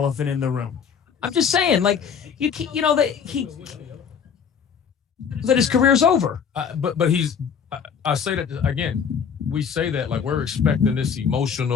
in the room. I'm just saying, like, that his career's over. But I say that again. We say that like we're expecting this him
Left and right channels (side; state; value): right; quieter; 7.0 dB